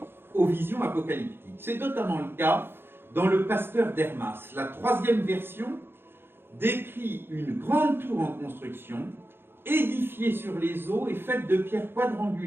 aux visions apocalyptiques. C'est notamment le cas dans le Pasteur d'Hermas. La 3e version décrit une grande tour en construction, édifiée sur les eaux et faite de pierres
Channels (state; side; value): late; left; 0.11 ms